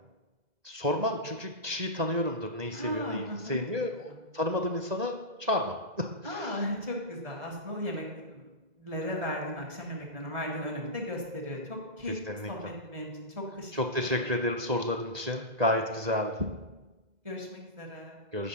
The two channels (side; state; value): left; late; 2.0 ms